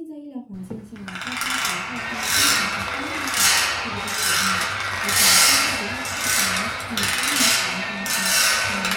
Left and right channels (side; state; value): both; identical; correlation 1.00